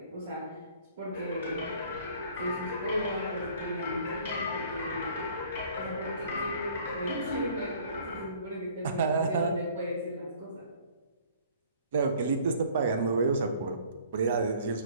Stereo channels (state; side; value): inverted; both; correlation -0.54